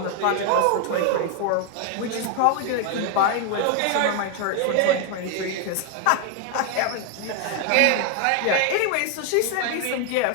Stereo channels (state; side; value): different; both; correlation 0.00